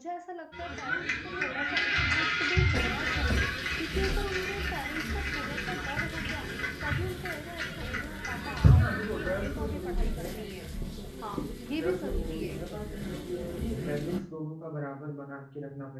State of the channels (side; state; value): both; identical; correlation 1.00